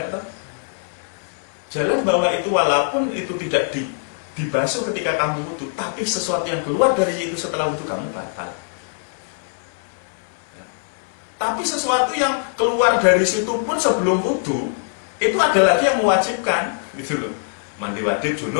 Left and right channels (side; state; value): right; silent; 60 dB below the other